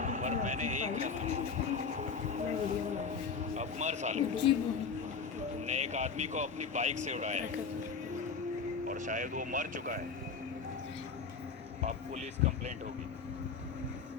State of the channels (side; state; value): right; quieter; 5.5 dB